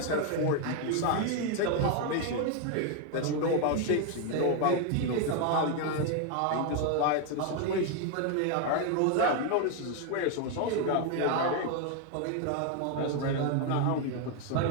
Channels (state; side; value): different; both; correlation 0.01